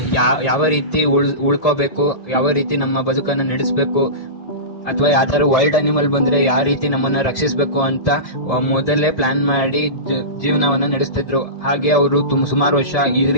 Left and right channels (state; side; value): late; right; 1.8 ms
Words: ಯಾವ ರೀತಿ ಉಳ್ಕೋಬೇಕು, ಯಾವ ರೀತಿ ನಮ್ಮ ಬದುಕನ್ನು ನಡೆಸಬೇಕು, ಅಥವಾ ಯಾವ್ದಾದ್ರು ವೈಲ್ಡ್ ಅನಿಮಲ್ ಬಂದ್ರೆ ಯಾವ ರೀತಿ ನಮ್ಮನ್ನ ರಕ್ಷಿಸಬೇಕು ಅಂತ ಮೊದಲೇ ಪ್ಲಾನ್ ಮಾಡಿ ಜೀವನವನ್ನು ನಡೆಸ್ತಿದ್ರು. ಹಾಗೆ ಅವರು ಸುಮಾರು ವರ್ಷ ಈ